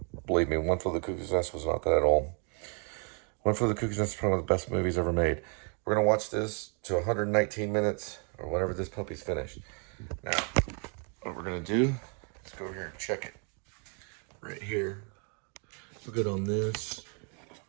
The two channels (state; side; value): quieter; left; 38.1 dB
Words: Believe me, One for the Cuckoo's Nest was not that at all. One for the Cuckoo's Nest is probably one of the best movies ever made. We're going to watch this to 119 minutes, or whenever this puppy's finished. Now, what we're going to do is go here and check it. Right here. We're good on this.